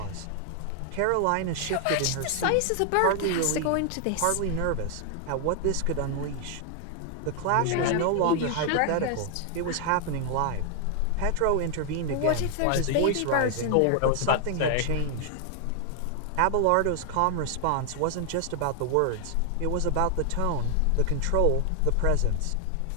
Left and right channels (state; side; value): different; both; correlation 0.00